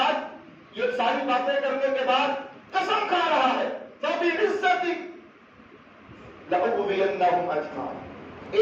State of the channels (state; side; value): identical; both; correlation 1.00